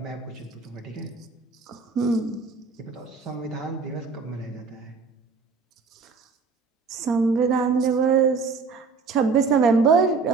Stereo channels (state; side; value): quieter; left; 4.7 dB